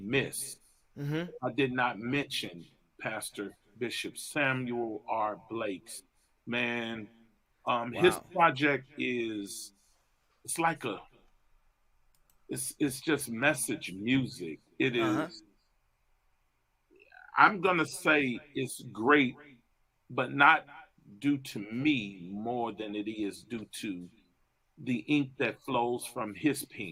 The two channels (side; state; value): both; identical; correlation 1.00